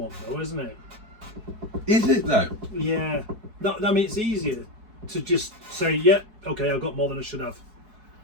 though, isn't it? Is it though? Yeah. No, I mean, it's easier to just say, yeah, okay, I've got more than I should have,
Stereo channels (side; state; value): left; late; 4.7 ms